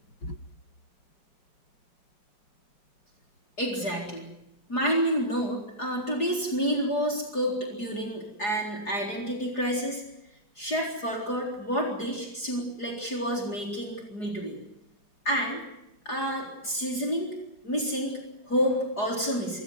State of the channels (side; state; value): right; late; 4.8 ms